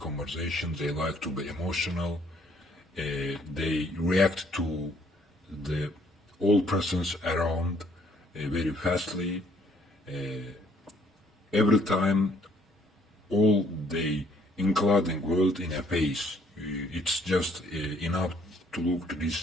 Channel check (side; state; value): both; normal; correlation 0.64